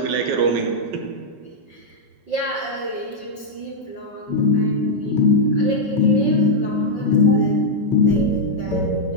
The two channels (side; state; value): left; late; 5.3 ms